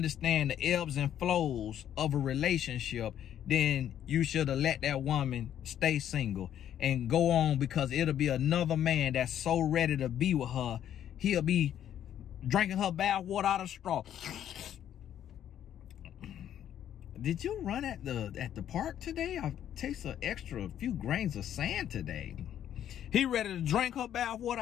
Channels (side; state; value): right; quieter; 10.5 dB